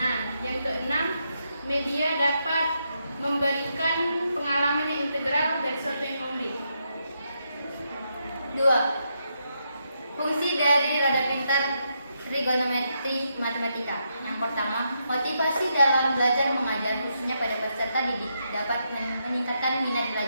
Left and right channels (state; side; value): inverted; both; correlation -0.81